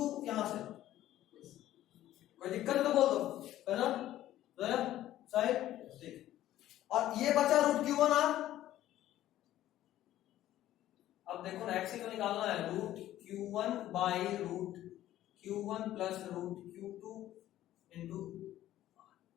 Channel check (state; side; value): quieter; right; 13.5 dB